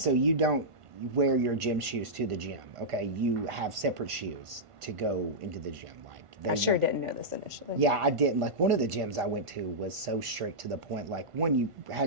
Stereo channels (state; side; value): late; left; 1.5 ms